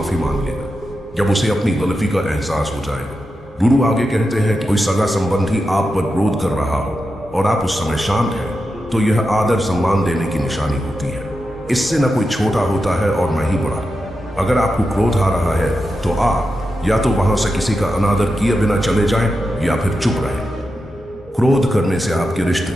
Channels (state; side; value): normal; both; correlation 0.89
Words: मांग लेगा जब उसे अपनी गलती का एहसास हो जाएगा। गुरु आगे कहते हैं कि कोई सगा संबंधी आप पर क्रोध कर रहा हो और आप उस समय शांत हैं, तो यह आदर सम्मान देने की निशानी होती है। इससे न कोई छोटा होता है और न ही बड़ा। अगर आपको क्रोध आ रहा है तो आप या तो वहां से किसी का अनादर किए बिना चले जाएं या फिर चुप रहें। क्रोध करने से आपके रिश्ते